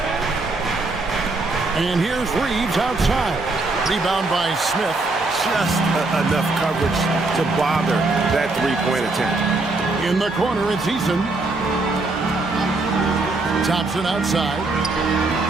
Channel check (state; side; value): quieter; left; 3.3 dB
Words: And here's Reeves outside. Rebound by Smith. Just enough coverage to bother that three-point attempt. In the corner, it's Eason. Thompson outside.